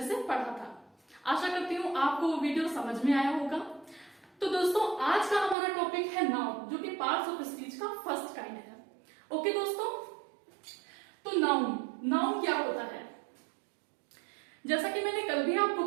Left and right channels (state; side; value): drops out; left; at 5.6 s